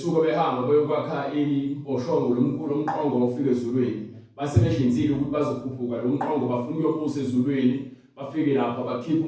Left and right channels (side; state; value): both; identical; correlation 1.00